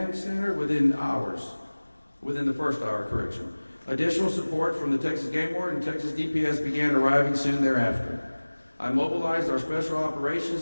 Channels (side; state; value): both; inverted; correlation -1.00